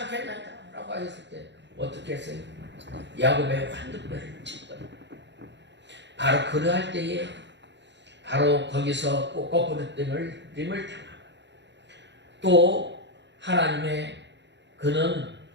라고 하셨을 때 어떻게 했어요? 야곱의 환두뼈를 쳤거든요. 바로 그러할 때에 바로 거기서 거꾸로 림을 당하고 또 하나님의 그는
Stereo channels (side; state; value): left; late; 0.52 ms